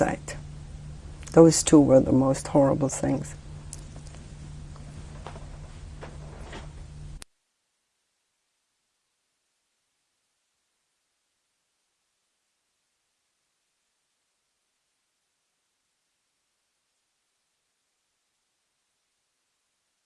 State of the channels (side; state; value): both; identical; correlation 1.00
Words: Those two were the most horrible things.